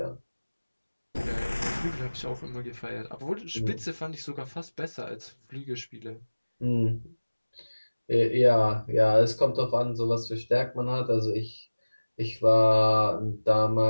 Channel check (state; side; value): inverted; both; correlation -1.00